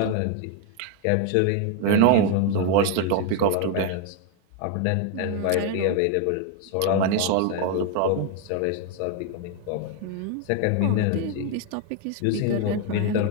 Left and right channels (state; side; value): different; both; correlation 0.01